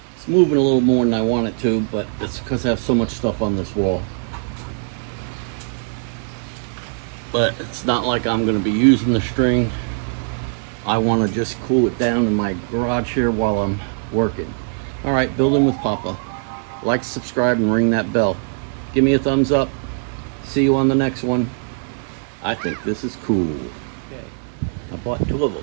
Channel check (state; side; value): silent; left; digital silence